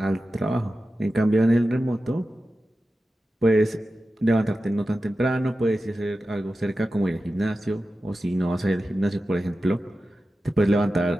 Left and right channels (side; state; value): both; normal; correlation 0.93